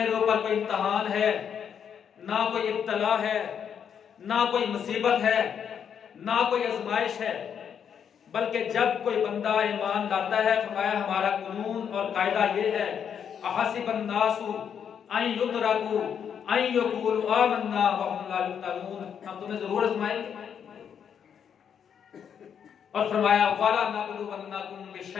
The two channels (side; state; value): right; quieter; 7.9 dB